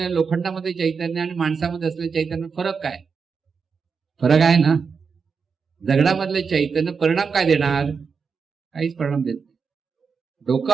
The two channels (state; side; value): quieter; left; 5.6 dB